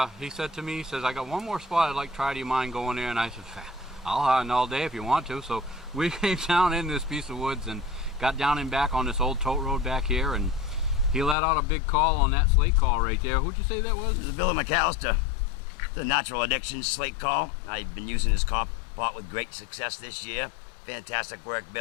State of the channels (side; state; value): right; drops out; at 11.4 s